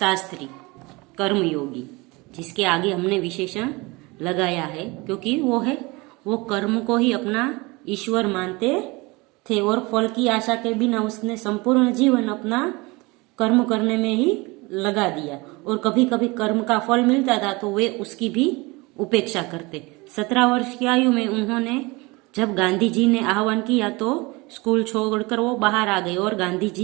कर्मयोगी, जिसके आगे हमने विशेषण लगाया है क्योंकि वो कर्म को ही अपना ईश्वर मानते थे और फल की आशा के बिना उसने संपूर्ण जीवन अपना कर्म करने में ही लगा दिया और कभी कभी कर्म का फल मिलता था तो वे उसकी भी उपेक्षा करते। 17 वर्ष की आयु में उन्होंने जब गांधी जी ने आह्वान किया तो स्कूल छोड़कर वो बाहर आ गए और गांधी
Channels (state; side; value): quieter; left; 24.6 dB